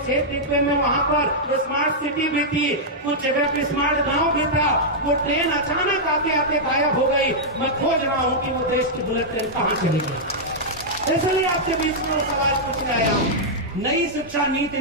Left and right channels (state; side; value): normal; both; correlation -0.08